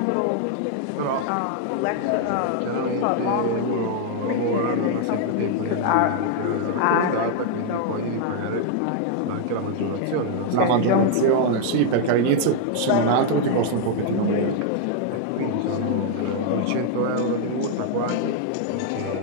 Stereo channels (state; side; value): different; both; correlation 0.00